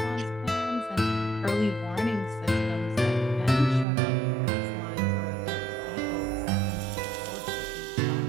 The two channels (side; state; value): left; drops out; at 3.9 s